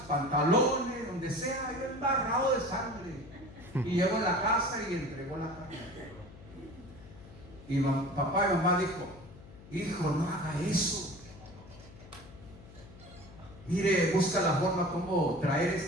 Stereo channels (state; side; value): noise; left; hum, 19 dB below the sound